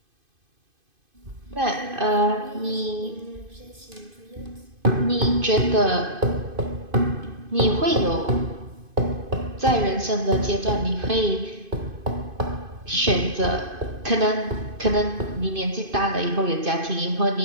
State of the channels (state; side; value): late; left; 2.5 ms